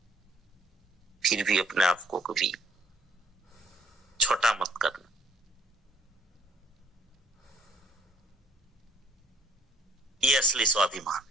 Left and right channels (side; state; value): both; normal; correlation 0.61